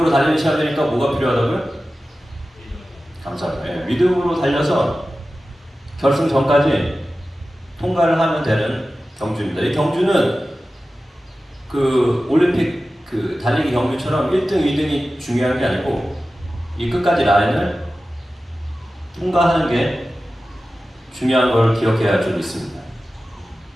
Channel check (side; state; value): both; normal; correlation 0.95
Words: 달리는 시합이니까 뭐가 필요하다고요? 감사합니다. 네, 믿음으로 달려서 결승전까지 통과를 하면 되는 경주입니다. 이 경주는 그 올림픽 그 달리기 경주처럼 1등, 2등이 중요한 게 아니고 이 끝까지 라인을 통과하는 게 중요한 걸 기억해야 좀 있습니다.